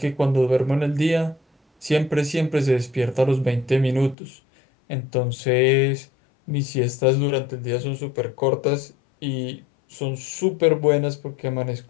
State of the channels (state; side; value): drops out; right; at 4.2 s